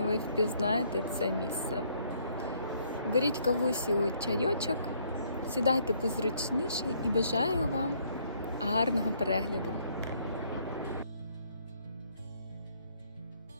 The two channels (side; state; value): both; inverted; correlation -0.66